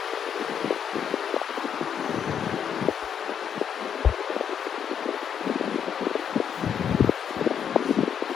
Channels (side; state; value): right; quieter; 8.1 dB